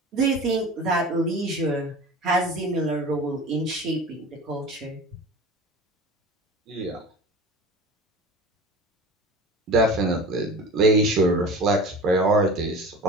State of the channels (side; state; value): both; normal; correlation 0.36